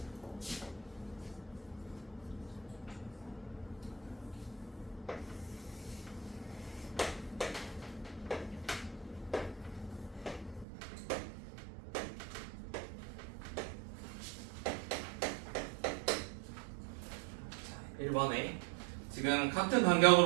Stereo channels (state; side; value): drops out; left; at 10.7 s